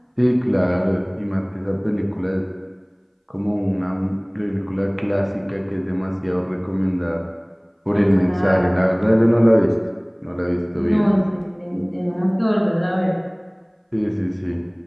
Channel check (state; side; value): identical; both; correlation 1.00